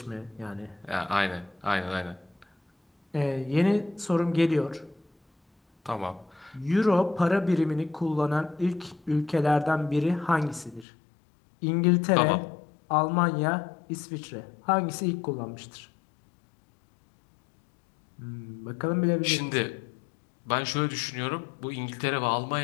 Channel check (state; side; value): drops out; right; at 10.9 s